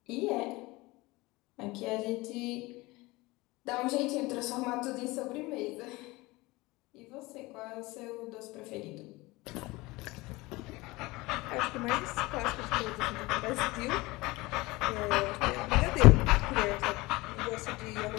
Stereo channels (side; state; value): right; quieter; 21.8 dB